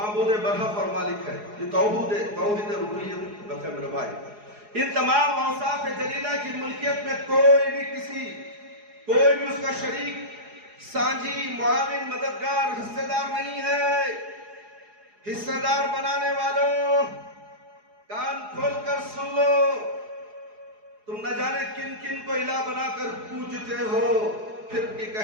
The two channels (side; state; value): left; late; 4.8 ms